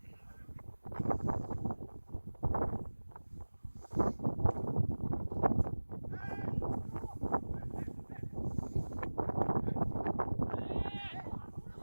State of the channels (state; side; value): inverted; both; correlation -1.00